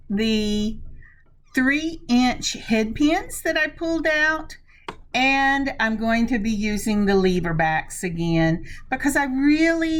the 3-inch head pins that I pulled out. And I'm going to be using the lever backs again because I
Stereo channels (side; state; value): both; identical; correlation 1.00